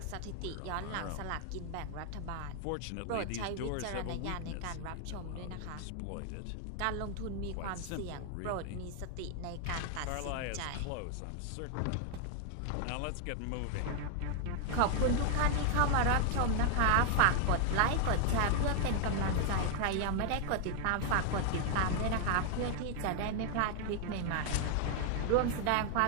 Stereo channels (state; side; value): different; both; correlation 0.00